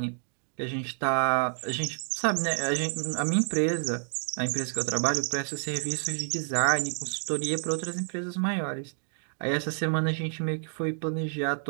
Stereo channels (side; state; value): left; silent; digital silence